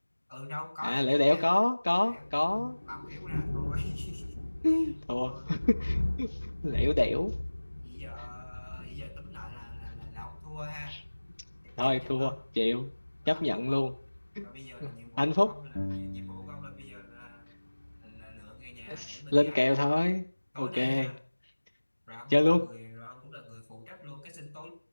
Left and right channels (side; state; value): both; inverted; correlation -1.00